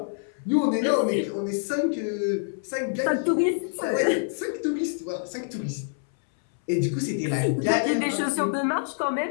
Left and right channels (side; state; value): right; silent; 61 dB below the other